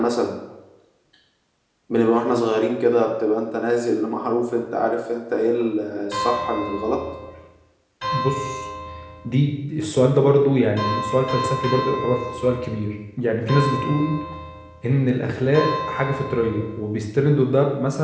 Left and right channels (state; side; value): identical; both; correlation 1.00